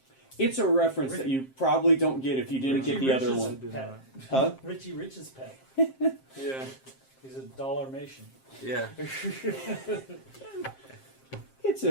It's a reference that you probably don't get if you didn't get the other Rich's one. did pet. Huh? Richie Rich's pet. yeah. He's a dollar-mation. Yeah. It's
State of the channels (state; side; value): late; right; 7.6 ms